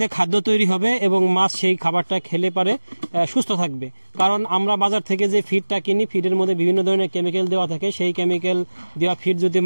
খাদ্য তৈরি হবে এবং মাছ সেই খাবারটা খেলে পারে সুস্থ থাকবে। কারণ আমরা বাজার থেকে যে ফিডটা কিনি, ফিডের মধ্যে বিভিন্ন ধরনের কেমিক্যাল দেওয়া থাকে। সেই কেমিক্যাল দেওয়া ফিড যদি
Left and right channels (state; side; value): inverted; both; correlation -1.00